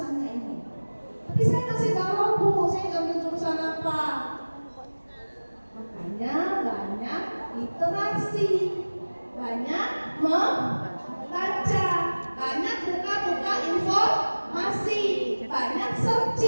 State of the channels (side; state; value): both; inverted; correlation -1.00